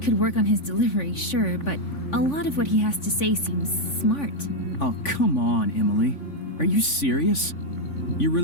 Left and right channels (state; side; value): late; right; 3.5 ms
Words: work on his delivery, sure, but a lot of what he has to say seems smart. Oh, come on, Emily. Are you serious? You